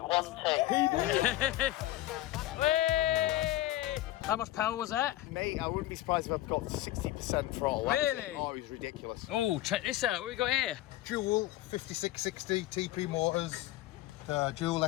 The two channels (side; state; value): right; quieter; 15.7 dB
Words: Whee! How much power was that? Mate, I wouldn't be surprised if I've got 60% throttle. Really? Oh, it was ridiculous. Oh, check this out. What we got here? Dual 5660 TP motors, dual